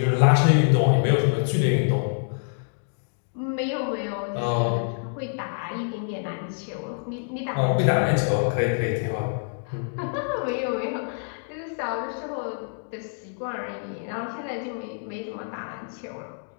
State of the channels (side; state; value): right; silent; digital silence